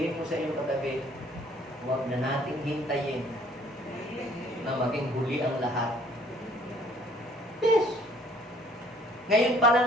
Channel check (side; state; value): both; normal; correlation 0.58